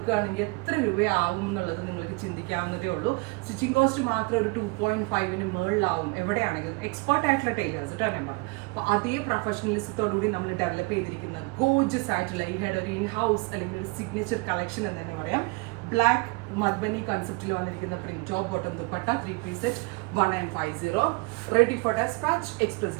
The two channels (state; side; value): quieter; left; 27.9 dB